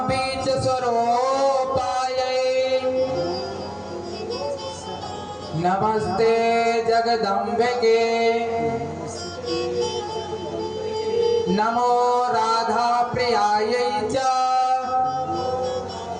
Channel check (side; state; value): both; identical; correlation 1.00